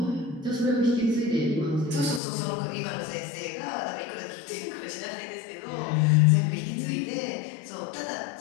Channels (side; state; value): right; drops out; at 2.2 s